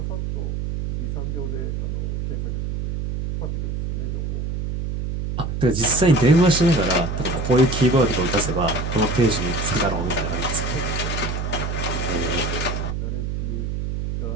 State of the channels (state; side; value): noise; right; hum, 3 dB below the sound